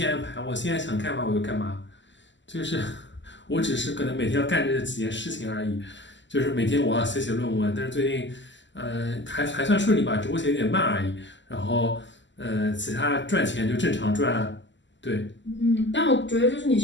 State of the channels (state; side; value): late; right; 0.54 ms